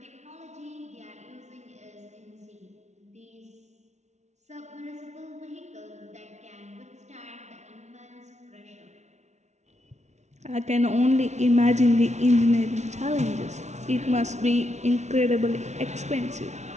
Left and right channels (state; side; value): late; left; 0.32 ms